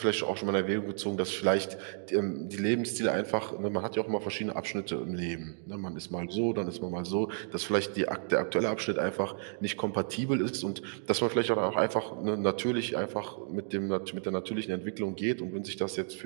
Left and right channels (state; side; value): silent; left; 57 dB below the other